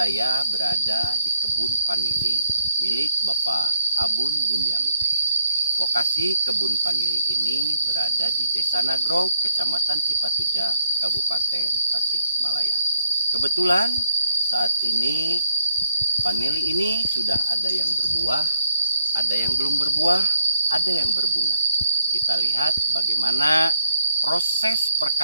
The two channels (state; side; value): inverted; both; correlation -0.72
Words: berada di kebun vanili milik Bapak Abun Bunyamin. Lokasi kebun vanili ini berada di Desa Nagrog, Kecamatan Cipatuja, Kabupaten Tasikmalaya. Kebetulan saat ini vanili ini sudah ada yang berbuah, ada yang belum berbuah, ada yang berbunga. Kita lihat bagaimana proses